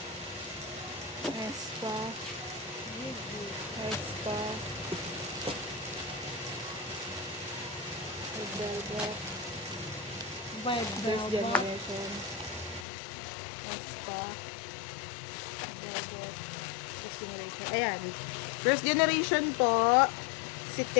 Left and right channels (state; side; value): drops out; right; at 12.9 s